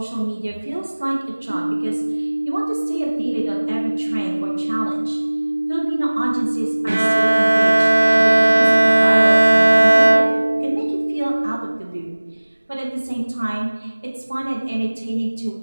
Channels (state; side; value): inverted; both; correlation -1.00